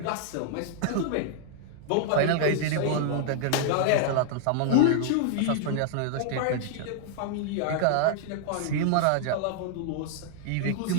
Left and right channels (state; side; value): different; both; correlation -0.01